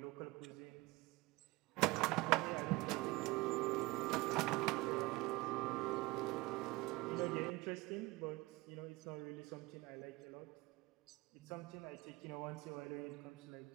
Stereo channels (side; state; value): left; quieter; 22.0 dB